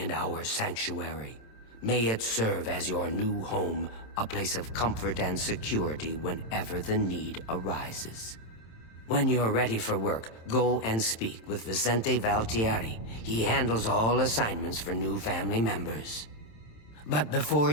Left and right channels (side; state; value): right; late; 27 ms